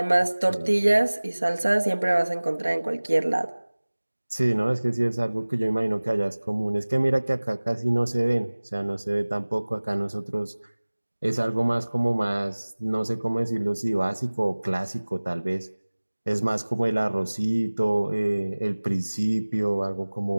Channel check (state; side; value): inverted; both; correlation -1.00